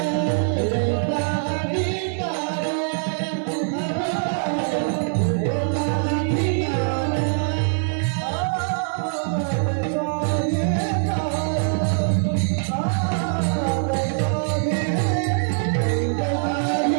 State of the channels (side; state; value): left; silent; digital silence